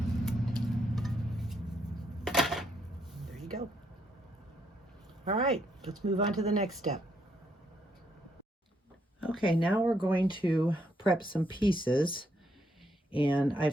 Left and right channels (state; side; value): normal; both; correlation 0.75